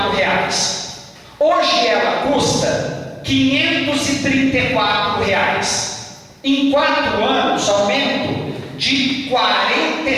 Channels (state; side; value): identical; both; correlation 1.00